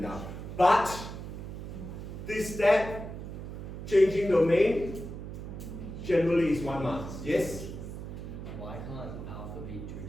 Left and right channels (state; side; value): noise; right; hum, 9 dB below the sound